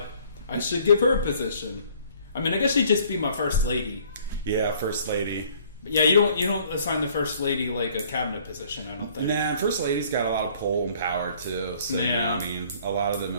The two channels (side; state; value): both; inverted; correlation -0.57